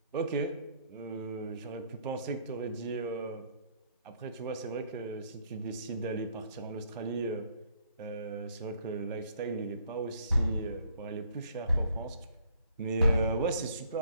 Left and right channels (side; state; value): both; inverted; correlation -0.63